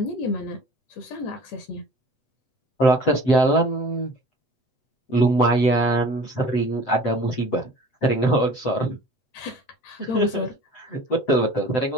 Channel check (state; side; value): late; right; 7.8 ms